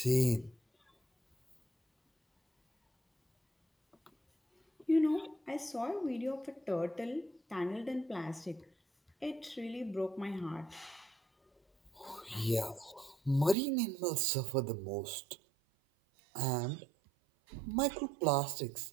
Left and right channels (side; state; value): left; drops out; at 13.6 s